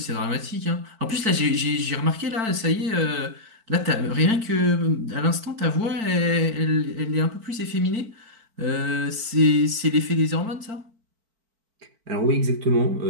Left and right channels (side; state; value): left; late; 4.5 ms